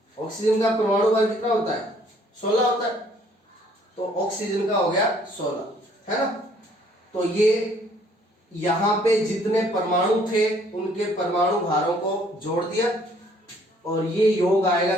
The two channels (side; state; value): both; normal; correlation 0.61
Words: ऑक्सीजन का परमाणु भार कितना होता है 16 होता है, तो ऑक्सीजन का हो गया 16। है ना। तो ये यहां पे जितने परमाणु थे उनके परमाणु भारों को जोड़ दिया और ये योग आएगा